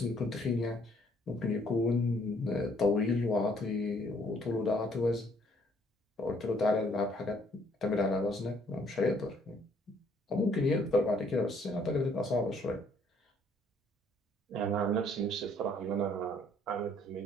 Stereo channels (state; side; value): normal; both; correlation 0.64